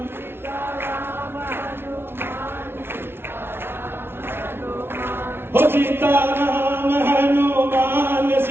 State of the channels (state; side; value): late; left; 0.11 ms